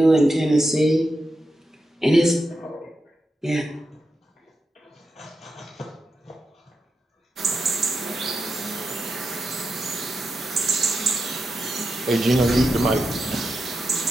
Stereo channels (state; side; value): normal; both; correlation 0.87